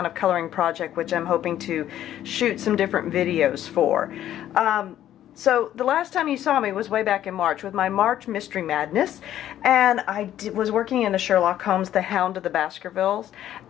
of coloring project, which I'm hoping to shoot some different videos for. So the last time you saw me was way back in March with my March Mystery Madness, and I was working in the Sherlock Holmes, the Hound of the Baskervilles,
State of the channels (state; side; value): quieter; right; 11.9 dB